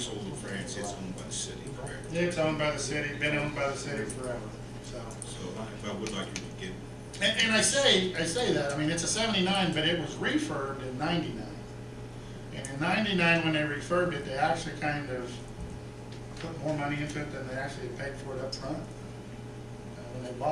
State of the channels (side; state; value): both; identical; correlation 1.00